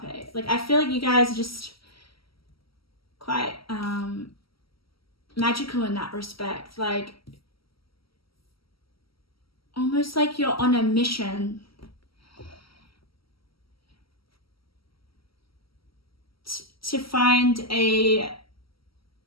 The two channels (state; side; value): late; right; 0.75 ms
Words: Like, I feel like you guys are just quite magical in that respect. Like, almost like you're on a mission to find an